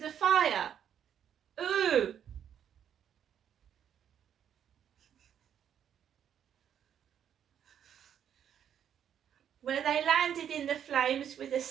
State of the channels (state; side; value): quieter; left; 9.1 dB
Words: fire. Ooh! Where they landed in the flames with a